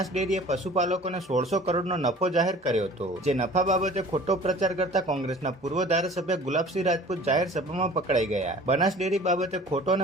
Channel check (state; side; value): normal; both; correlation 0.46